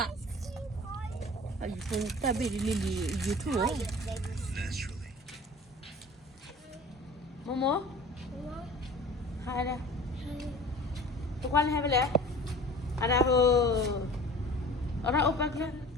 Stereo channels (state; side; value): normal; both; correlation 0.42